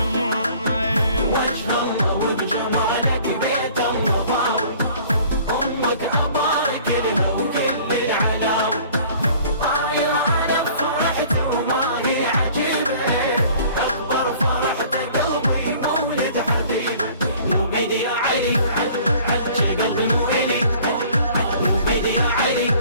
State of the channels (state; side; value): inverted; both; correlation -0.51